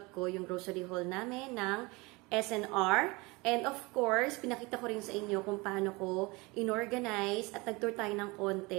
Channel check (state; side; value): quieter; left; 24.9 dB